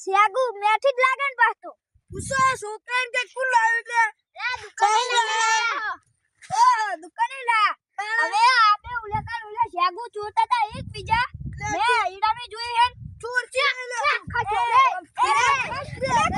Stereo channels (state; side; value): identical; both; correlation 1.00